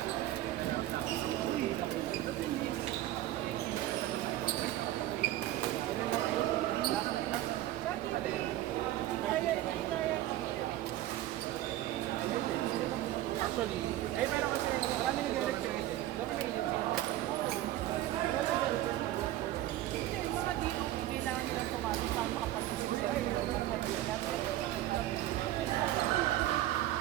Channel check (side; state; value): left; quieter; 14.5 dB